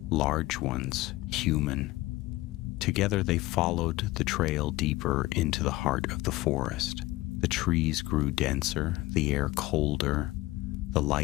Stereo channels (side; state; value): right; quieter; 18.4 dB